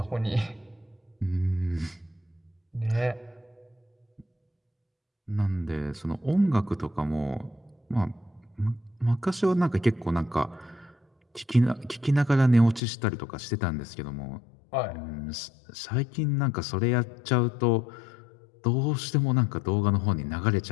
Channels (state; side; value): drops out; right; at 12.8 s